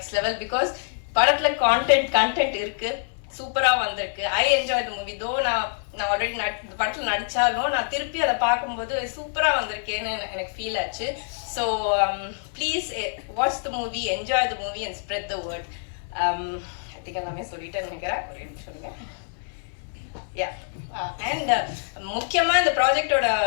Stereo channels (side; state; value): right; silent; 61 dB below the other